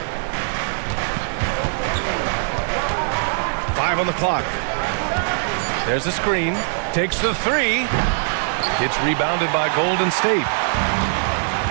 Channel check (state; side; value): silent; left; 63 dB below the other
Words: On the clock. There's a screen. Takes the 3. It's rebounded by Golden State.